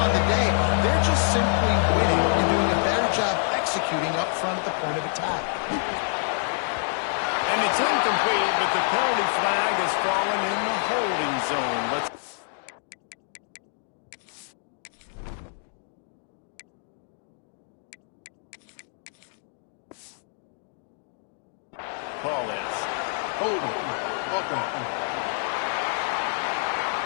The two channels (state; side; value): silent; right; digital silence